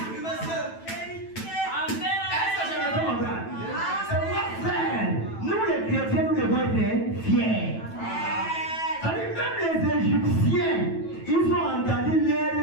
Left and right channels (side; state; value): right; late; 9.1 ms